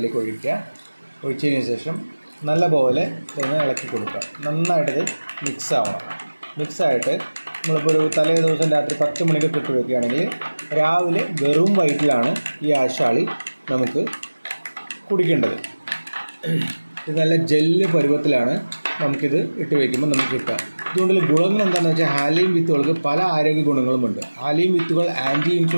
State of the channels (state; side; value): inverted; both; correlation -1.00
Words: ഒഴിച്ചതിന് ശേഷം നല്ലപോലെ ഇതൊന്ന് ഇളക്കി കൊടുക്കുക. നന്നായിട്ടത് മിക്സായിട്ട് നമ്മളിപ്പോൾ ഒരു തലേ ദിവസം രാത്രി 10 മണിക്ക് ഇട്ട് വയ്ക്കുകയാണെങ്കിൽ രാവിലെ വെറും വയറ്റിലാണ് ഈ ആശാളി നമുക്ക് കുടിക്കേണ്ടത്. ഇത് നല്ല ജെല്ല് പരുവത്തിലാണ് നമുക്കിത് ഇട്ട് വയ്ക്കുമ്പോൾ നമുക്ക് കിട്ടുക. ഇതുകൊണ്ടുള്ള ഗുണങ്ങൾ എന്താണെന്ന് വെച്ചാൽ, ഹാലീം വിത്തുകൾക്ക് പല ആരോഗ്യ ഗുണങ്ങളുമുണ്ട്. ഹാലീം വിത്തുകൾ ആൻറ്റി